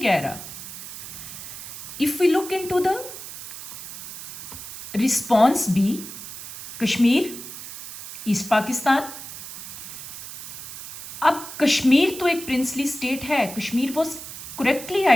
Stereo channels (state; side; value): noise; right; hiss, 11 dB below the sound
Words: कह रहा। If we look into the response B, Kashmir, East Pakistan. अब कश्मीर तो एक प्रिंसली स्टेट है, Kashmir was correctly